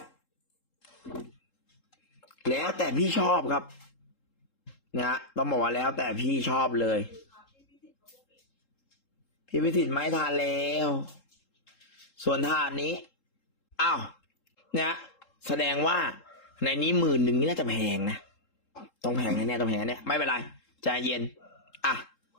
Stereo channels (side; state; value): right; late; 3.7 ms